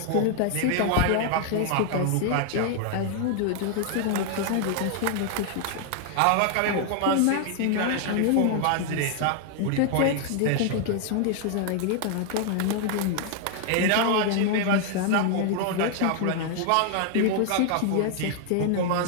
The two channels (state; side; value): different; both; correlation 0.00